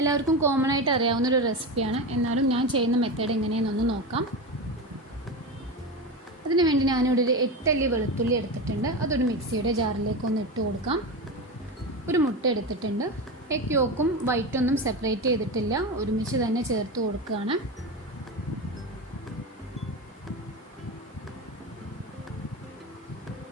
കോമൺ ആയിട്ട് അറിയാവുന്നൊരു റെസിപ്പിയാണ്. എന്നാലും ഞാൻ ചെയ്യുന്ന മെത്തേഡ് എങ്ങനെയെന്നൊന്ന് നോക്കാം. അതിന് വേണ്ടി ഞാനിവിടെ ഒരു 8 അല്ലി വെളുത്തുള്ളി എടുത്തിട്ടുണ്ട്. അതൊരു മിക്സിയുടെ ജാറിലേക്ക് ഒന്ന് ഇട്ട് കൊടുക്കാം. ഒരു മുട്ട എടുത്തിട്ടുണ്ട്. എഗ് യോക്കും വൈറ്റൊന്നും സെപ്പറേറ്റ് ചെയ്തിട്ടില്ല, ഒരുമിച്ച് തന്നെ ചേർത്ത് കൊടുക്കുകയാണ്.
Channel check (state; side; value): normal; both; correlation 0.21